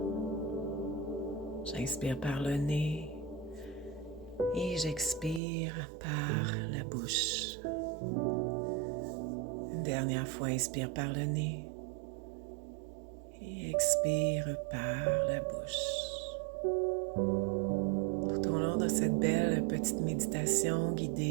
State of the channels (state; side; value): drops out; left; at 5.4 s